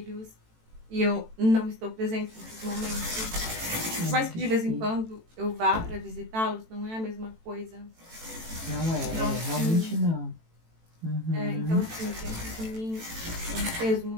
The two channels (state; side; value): late; left; 18 ms